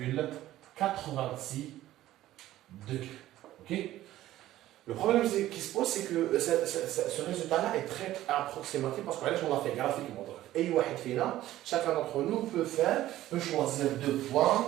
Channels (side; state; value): left; quieter; 14.5 dB